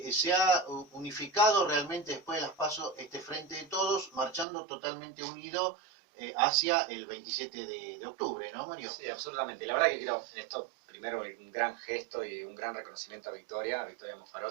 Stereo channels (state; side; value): drops out; left; at 4.5 s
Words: ha unificado realmente después de las PASO este Frente de Todos, marchando totalmente unido hacia el 27 de octubre, ¿no, Mario? Sí, absolutamente. La verdad que creo en esto, primero, un gran gesto y un gran reconocimiento a Victoria